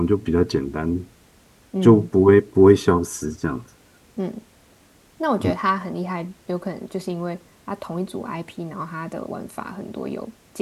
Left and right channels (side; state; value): both; identical; correlation 1.00